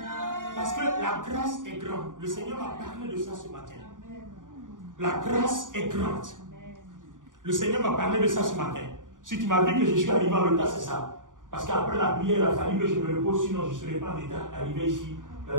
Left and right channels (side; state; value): left; late; 0.88 ms